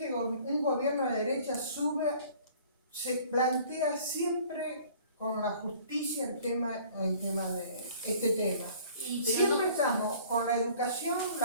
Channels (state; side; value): inverted; both; correlation -0.52